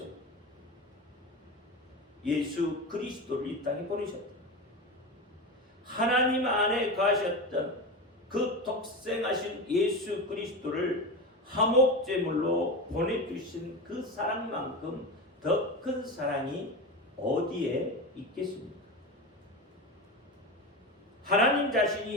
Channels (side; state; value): both; normal; correlation 0.22